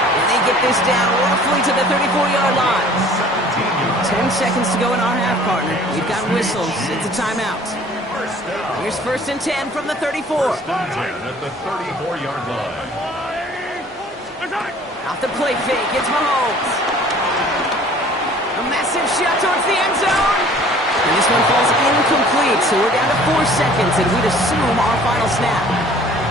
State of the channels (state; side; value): normal; both; correlation 0.51